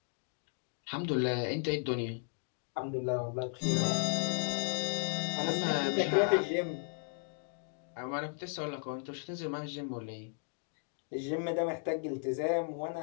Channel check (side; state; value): right; silent; 54 dB below the other